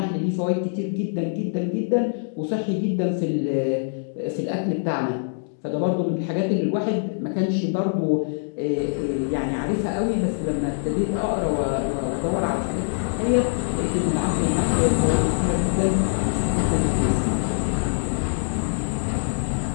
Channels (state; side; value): silent; right; digital silence